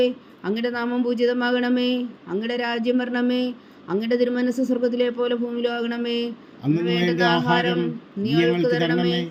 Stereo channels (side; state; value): both; identical; correlation 1.00